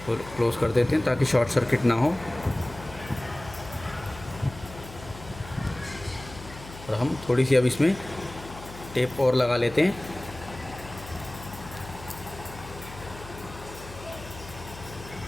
क्लोज़ कर देते हैं ताकि शॉर्ट सर्किट ना हो। और हम थोड़ी सी अब इसमें टेप और लगा लेते हैं।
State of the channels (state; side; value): noise; left; hum, 15 dB below the sound